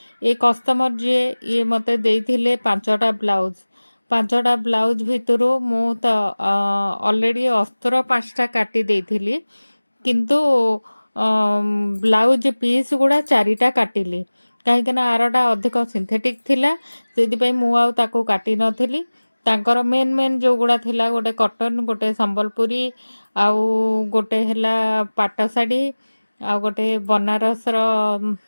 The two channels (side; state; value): both; inverted; correlation -1.00